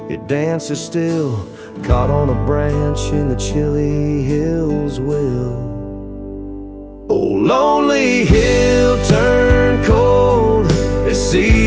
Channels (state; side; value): identical; both; correlation 1.00